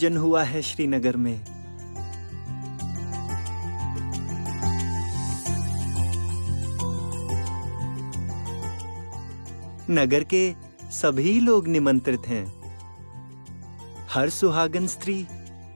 हुआ है श्रीनगर में। नगर के सभी लोग निमंत्रित हैं। हर सुहागन स्त्री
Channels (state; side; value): inverted; both; correlation -1.00